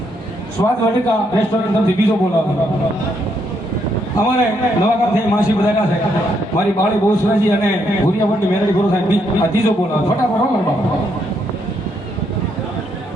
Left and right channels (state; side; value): normal; both; correlation 0.75